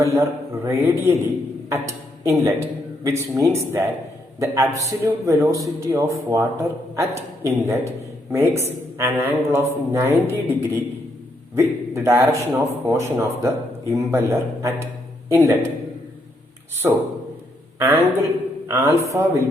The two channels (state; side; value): normal; both; correlation 0.76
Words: radially at inlet, which means that the absolute velocity of water at inlet makes an angle of 90° with the direction of motion of the impeller at inlet. So, angle alpha